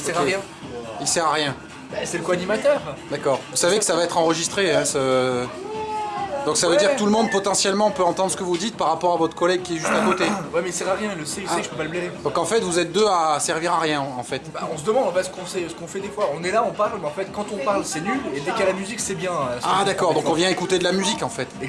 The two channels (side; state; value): both; identical; correlation 1.00